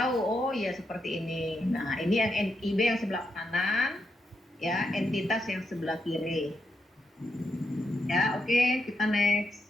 oh ya seperti ini. Nah, ini yang NIB yang sebelah kanan, ya, entitas yang sebelah kiri. Ya, oke, kita next.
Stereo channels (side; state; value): both; normal; correlation 0.83